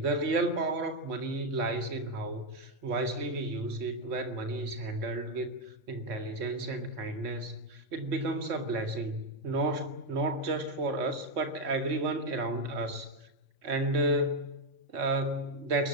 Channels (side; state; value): left; late; 3.6 ms